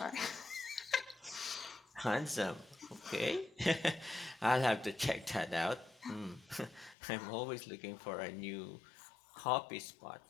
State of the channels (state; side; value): drops out; right; at 7.0 s